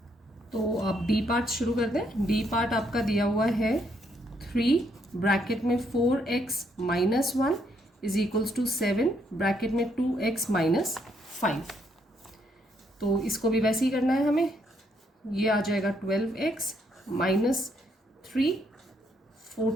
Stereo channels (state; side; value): normal; both; correlation 0.73